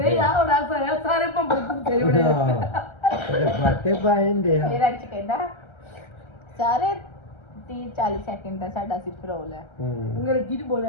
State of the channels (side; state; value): right; late; 1.3 ms